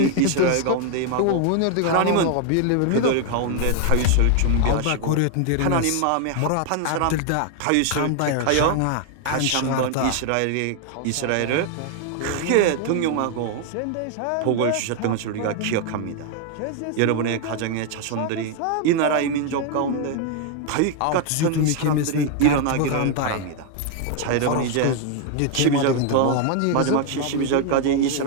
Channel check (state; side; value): different; both; correlation 0.00